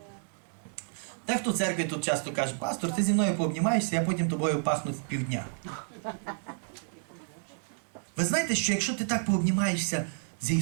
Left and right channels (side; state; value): left; silent; digital silence